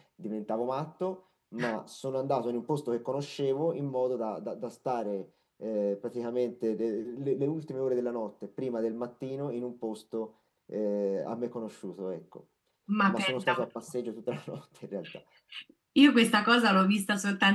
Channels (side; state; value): both; identical; correlation 1.00